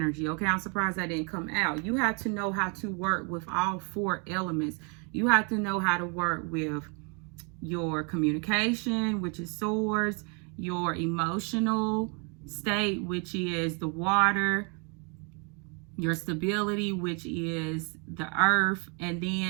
okay? I'm surprised that didn't come out. You have to know how to work with all 4 elements. You have to know how to work with your communication, which is swords, your emotional state, which is the water, your stability, which is the earth, and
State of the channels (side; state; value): left; quieter; 35.4 dB